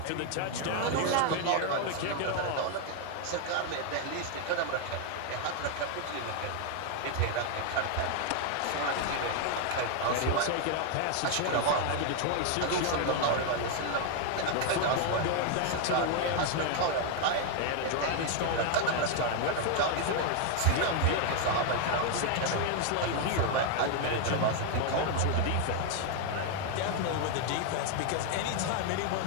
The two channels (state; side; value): different; both; correlation 0.00